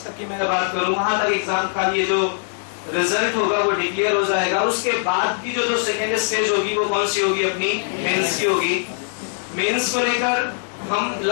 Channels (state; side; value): silent; right; digital silence